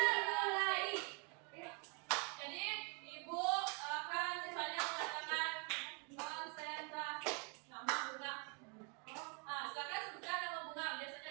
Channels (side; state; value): left; quieter; 35.3 dB